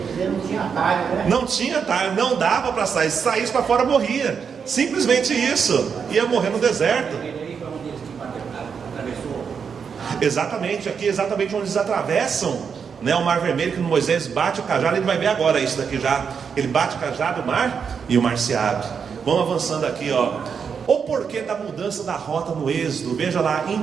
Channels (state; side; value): quieter; left; 6.5 dB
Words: não tinha atalho, né? Não tinha atalho, não dava para sair. Se saísse para fora, morria. Simplesmente isso. Ia morrer no deserto. Exatamente, aqui exatamente onde eles atravessam, né, o Mar Vermelho, que Moisés bate o cajado. Ele vai ver agora isso daqui já. Ele bate o cajado, o mar, e o mar se abre. Vamos avançando aqui, O porquê da mudança da rota no êxodo? Veja lá,